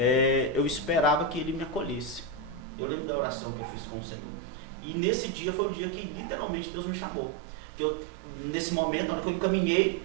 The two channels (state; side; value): drops out; left; at 2.7 s